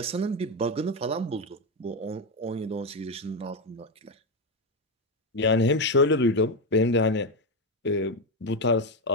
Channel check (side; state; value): both; normal; correlation 0.09